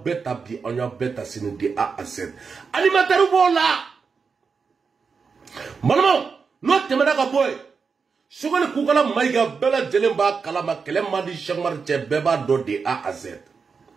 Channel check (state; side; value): quieter; left; 5.3 dB